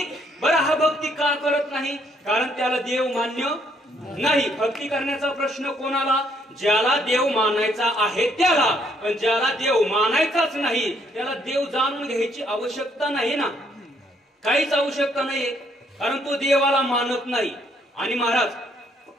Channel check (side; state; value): both; normal; correlation 0.69